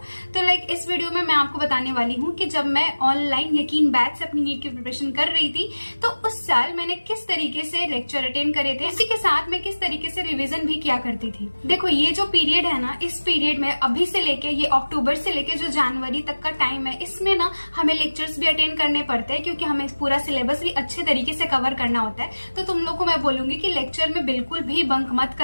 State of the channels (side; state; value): both; inverted; correlation -1.00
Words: तो इस वीडियो में मैं आपको बताने वाली हूँ कि जब मैं ऑनलाइन यकीन बैच से अपनी नीट की प्रिपरेशन कर रही थी तो उस साल मैंने किस तरीके से लेक्चर अटेंड करे थे, इसी के साथ मैं किस तरीके से रिवीजन भी किया करती थी। देखो ये जो पीरियड है ना, इस पीरियड में अभी से लेके ये अक्टूबर से लेके जो जनवरी तक का टाइम है, इसमें ना हमें लेक्चर्स भी अटेंड करने पड़ते हैं क्योंकि हमें पूरा सिलेबस भी अच्छे तरीके से कवर करना होता है। तो तुम लोग को मैं बोलूंगी कि लेक्चर में बिल्कुल भी बंक मत